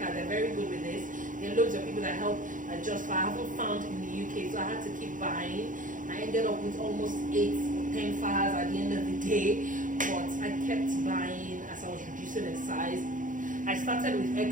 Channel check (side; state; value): left; late; 0.38 ms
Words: they're very good with this. There are loads of people that help adjust faha. I haven't found in the UK, so I had to keep buying. I ended up with almost 8 or 10 fahas at the end of the day, but I kept buying as I was reducing in size. I started with